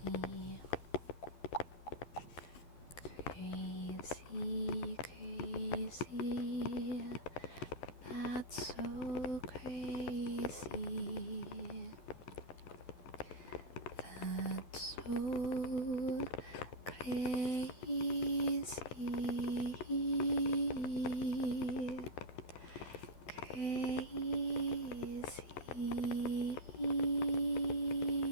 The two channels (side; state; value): right; late; 12 ms